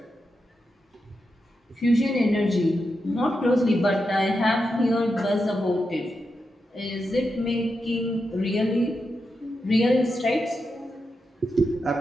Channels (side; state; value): both; normal; correlation 0.87